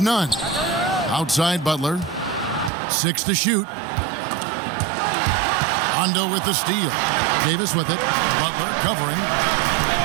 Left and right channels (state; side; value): drops out; left; at 2.7 s